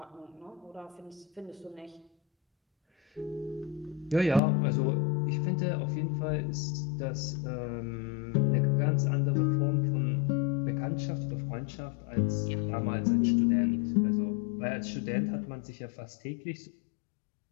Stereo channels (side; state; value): right; drops out; at 4.4 s